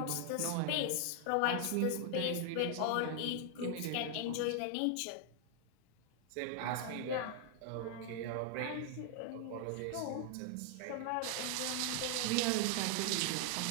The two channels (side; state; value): both; different; correlation 0.00